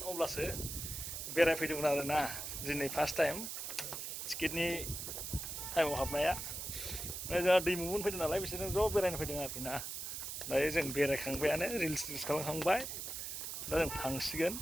अब्लासो बेरायफैदोंमोन आरो ना। दिनै फार्स्ट टाइम टिकेटनि टाइमाव हाबनाया। जोंहा दैमुमोन फैदों नालाय बिसोरजों ज' बेरायनो फैदों आरोखि ना। दायो जों बेरायखांबायानो रिल्स खालामखांबाय। दा जों थांसिगोन।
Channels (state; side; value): noise; right; hiss, 5 dB below the sound